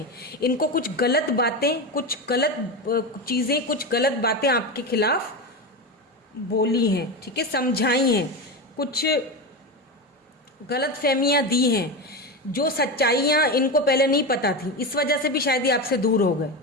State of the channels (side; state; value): both; normal; correlation 0.18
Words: इनको कुछ गलत बातें, कुछ गलत चीज़ें, कुछ गलत बातें आपके खिलाफ बोली हैं, ठीक है, समझाई हैं, कुछ गलत फहमियाँ दी हैं, जो सच्चाइयाँ इनको पहले नहीं पता थी, इस वजह से भी शायद ये आपसे दूर हो गए,